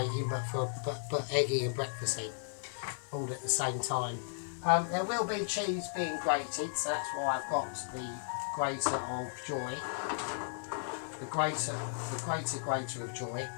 but eggy and breakfasty, all at the same time. There will be cheese being grated, so that's why I've got the grater of joy. The grater of joy.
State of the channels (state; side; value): silent; right; digital silence